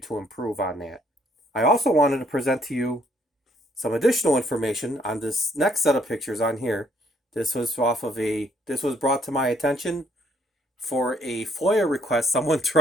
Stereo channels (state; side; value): normal; both; correlation 0.67